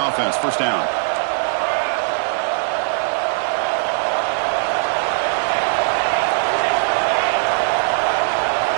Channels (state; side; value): silent; left; 60 dB below the other